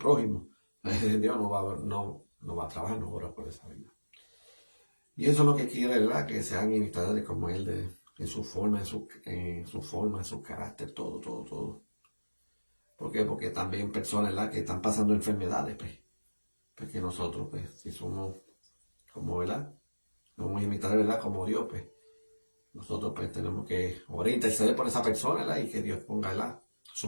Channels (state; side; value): inverted; both; correlation -1.00